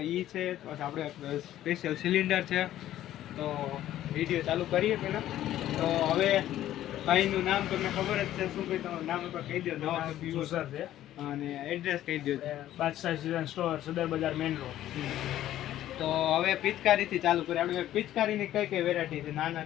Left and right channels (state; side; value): quieter; right; 13.0 dB